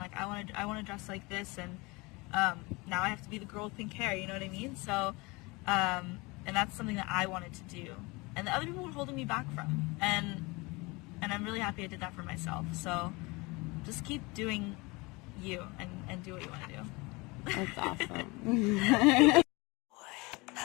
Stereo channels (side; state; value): right; quieter; 25.4 dB